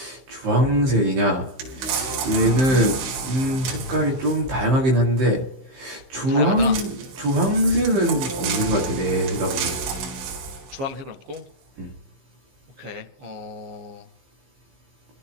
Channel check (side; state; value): left; late; 15 ms